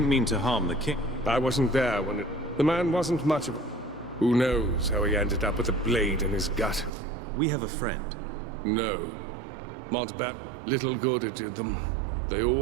mean to harm the king... I wasn't there when it... The man wasn't much of a... Who knows how he ended up with a blade in his gut? We have a friend. No. Montbat, little good it did them. They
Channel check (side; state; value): left; drops out; at 6.9 s